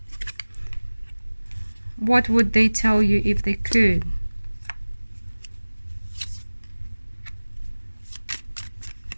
What would they tell you if they could?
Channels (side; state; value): both; inverted; correlation -1.00